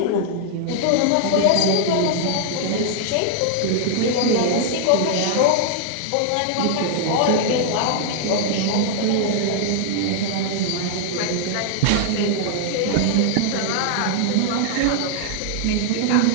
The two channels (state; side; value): different; both; correlation -0.01